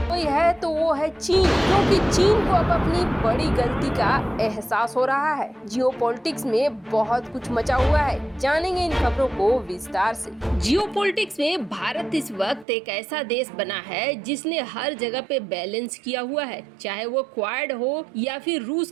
कोई है तो वो है चीन, क्योंकि चीन को अब अपनी बड़ी गलती का एहसास हो रहा है। जियोपॉलिटिक्स में बहुत कुछ मचा हुआ है, जानेंगे इन खबरों को विस्तार से। जियोपॉलिटिक्स में भारत इस वक्त एक ऐसा देश बना है जिसने हर जगह पे बैलेंस किया हुआ है, चाहे वो क्वाड हो या फिर रूस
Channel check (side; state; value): left; drops out; at 12.7 s